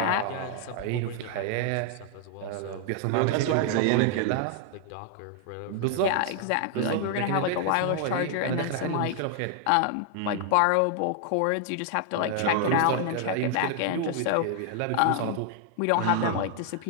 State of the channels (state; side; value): different; both; correlation 0.00